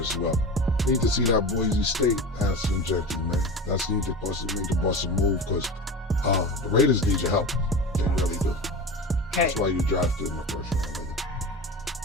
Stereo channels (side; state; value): both; normal; correlation 0.29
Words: well. Need to see that Boise State Ashton Genty, man. That's need to bust a move because the Raiders need your help. They really do. Okay. That's why you drafted in the first round.